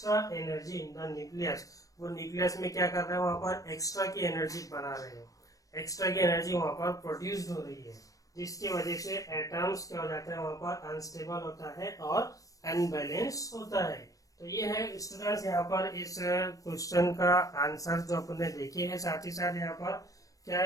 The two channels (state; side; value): late; right; 0.16 ms